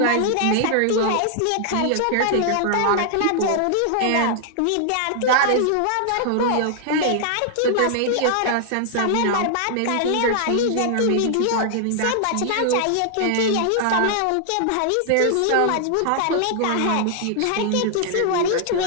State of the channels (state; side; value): different; both; correlation 0.00